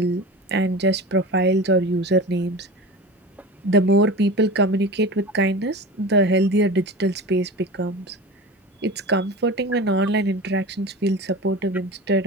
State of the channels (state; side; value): normal; both; correlation 0.32